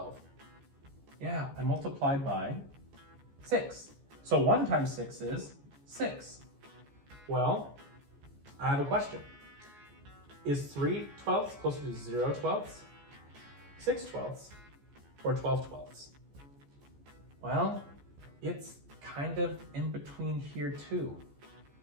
Yeah, I multiplied by 6. So 1 times 6 is 6. Well, I have a question. Is 3/12 closer to 0/12, 6/12, or 12/12? Well, it's kind of in between here too.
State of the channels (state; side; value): late; left; 14 ms